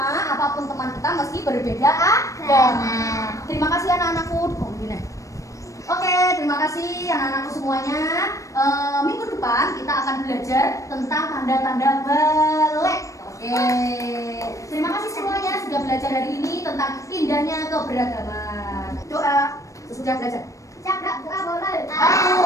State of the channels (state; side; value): late; right; 0.16 ms